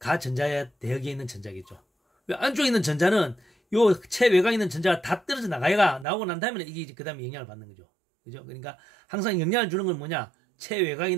대역에 있는 전자겠죠. 왜 안쪽에 있는 전자는 요 최외곽에 있는 전자가 다 떨어져 나오고 난 다음에 이게 그 다음에 영향을 받는 거죠. 그죠? 그러니까 항상 영향을 주는 건 뭐냐? 최외곽에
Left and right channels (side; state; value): left; drops out; at 6.1 s